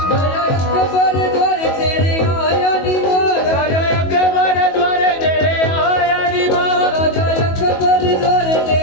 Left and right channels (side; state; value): right; late; 22 ms